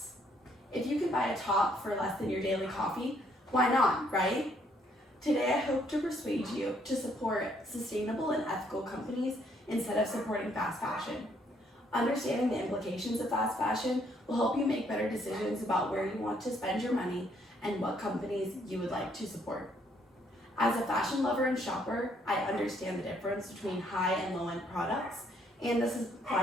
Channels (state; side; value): normal; both; correlation 0.68